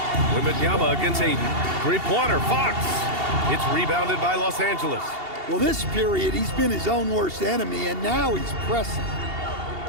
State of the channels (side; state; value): left; late; 2.8 ms